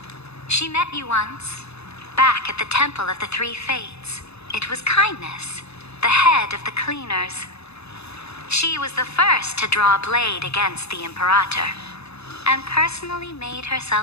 She met you once, back at the Temple of the Three Fates. It was Kindness, the head of the cleaners. She was the first to draw a blade against the Imperator, and personally made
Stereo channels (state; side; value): late; right; 0.79 ms